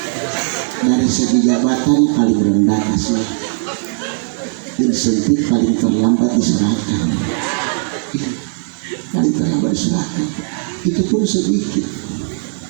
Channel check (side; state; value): left; silent; digital silence